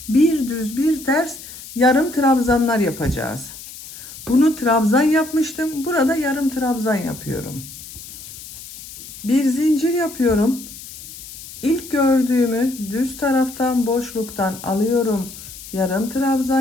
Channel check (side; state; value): left; noise; hiss, 14 dB below the sound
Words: bir düz bir ters yarım trabzanlar yapacağız. Bunu trabzan yapmıştım. Burada yarım trabzan yapıyorum. Bir zincir yapıyorum. İlk gördüğümü düz taraftan boşluktan alıyorum. Yarım